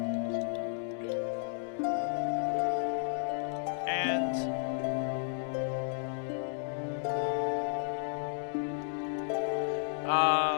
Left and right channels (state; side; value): silent; right; digital silence